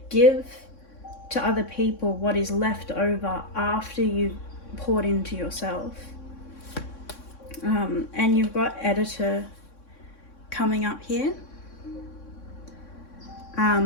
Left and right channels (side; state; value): right; late; 3.6 ms